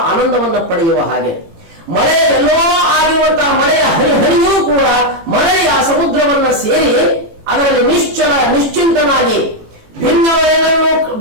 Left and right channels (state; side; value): late; left; 18 ms